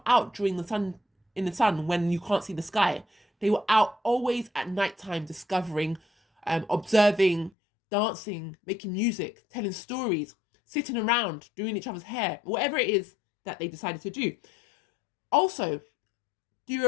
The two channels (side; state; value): right; drops out; at 7.5 s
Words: out during in the sun when you can't see the sky. They were out always at nighttime, discovering, observing, dancing, making music, telling stories, sitting around, doing each other's hair, whatever it is that they decided to do. Also, the